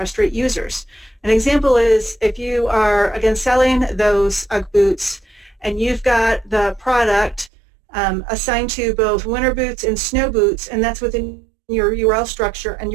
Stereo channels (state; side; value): drops out; left; at 7.5 s